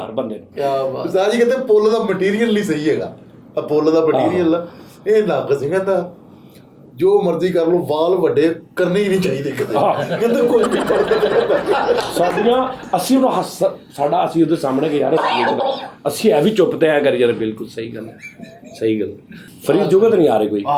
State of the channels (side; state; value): both; identical; correlation 1.00